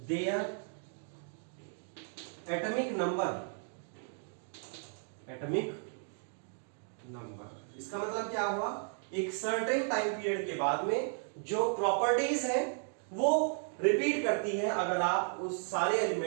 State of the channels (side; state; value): left; silent; 55 dB below the other